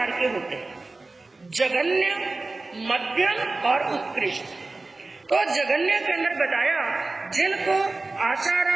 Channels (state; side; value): quieter; left; 3.3 dB